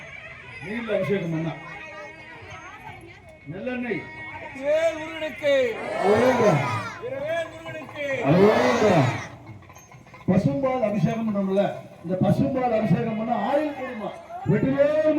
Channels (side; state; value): both; identical; correlation 1.00